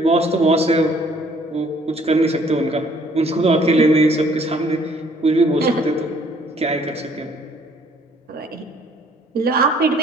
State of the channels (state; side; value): normal; both; correlation 0.60